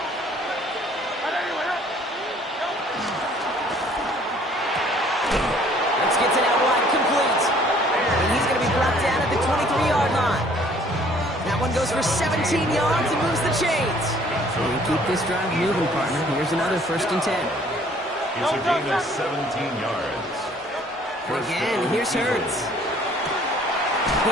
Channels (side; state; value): both; normal; correlation 0.58